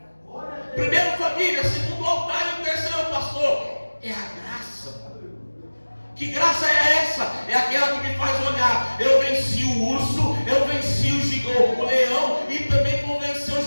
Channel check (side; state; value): both; inverted; correlation -1.00